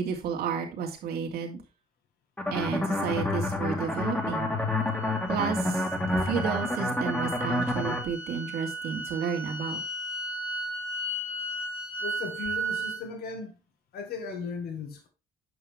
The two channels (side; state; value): both; normal; correlation 0.54